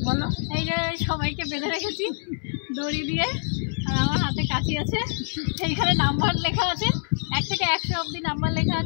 বলো। এই যে সবাইকে বেঁধে রেখেছি দড়ি দিয়ে, আর আমার হাতে কাঁচি আছে। এইখানে নাম্বার লেখা আছে, 1 থেকে 100 অবধি নাম্বার লেখা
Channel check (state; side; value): silent; right; 62 dB below the other